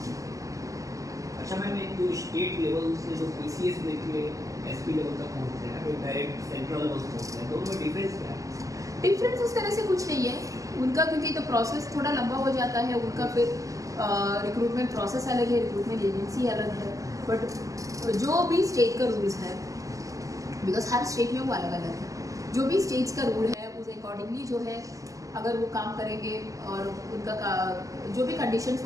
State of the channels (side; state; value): left; late; 0.16 ms